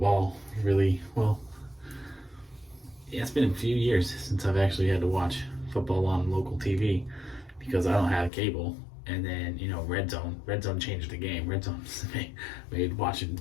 really well. Yeah, it's been a few years since I've actually had to watch football on local TV because I don't have cable. And then, Red Zone changed the game. Red Zone made watching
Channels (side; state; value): right; drops out; at 8.3 s